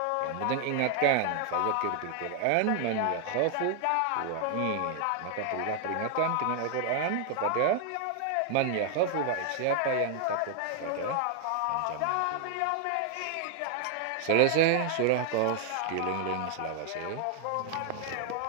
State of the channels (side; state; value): both; different; correlation 0.00